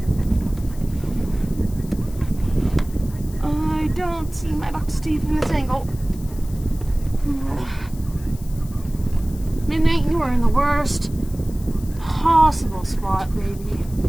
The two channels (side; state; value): left; noise; hiss, 21 dB below the sound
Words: I don't see my box teeth in this angle. Midnight, you are in the worst possible spot, baby.